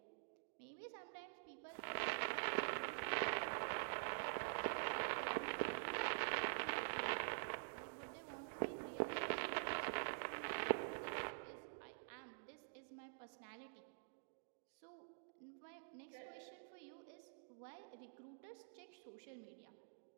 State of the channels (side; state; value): left; silent; digital silence